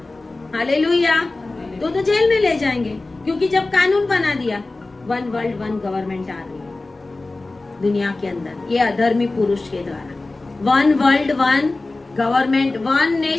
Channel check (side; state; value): right; quieter; 3.2 dB